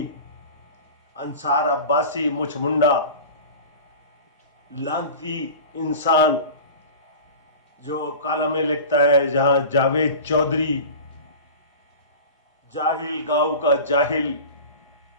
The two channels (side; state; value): both; inverted; correlation -0.34